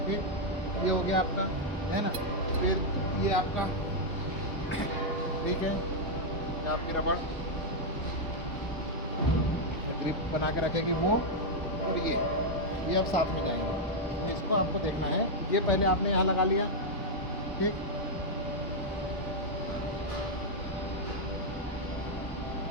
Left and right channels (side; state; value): both; normal; correlation -0.02